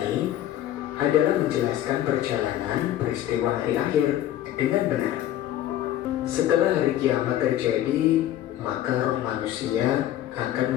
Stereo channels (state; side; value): quieter; right; 12.5 dB